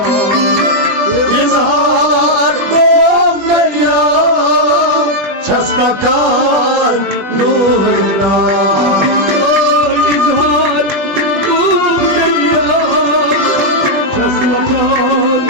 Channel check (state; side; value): late; left; 21 ms